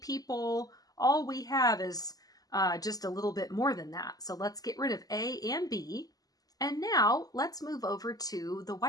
All we have is just a little bit more than that. So let's get rid of A and B. And now let's move over to the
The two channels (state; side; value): late; right; 0.18 ms